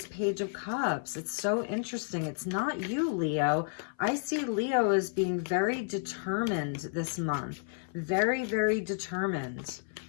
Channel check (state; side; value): silent; right; 55 dB below the other